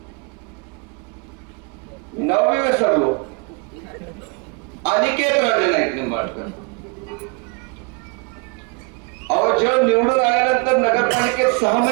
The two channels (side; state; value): left; quieter; 31.9 dB